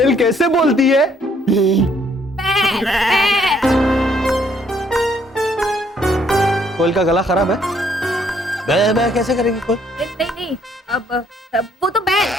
कैसे बोलती है? कोयल का गला खराब है। बै बै कैसे करेगी कोयल? नहीं नहीं, अब वो तो बैल।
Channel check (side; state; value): both; normal; correlation 0.67